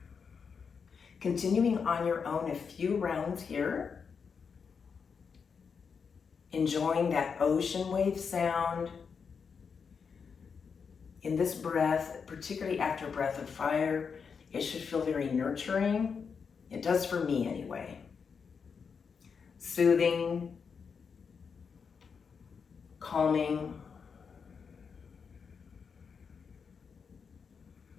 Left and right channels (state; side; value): quieter; right; 6.0 dB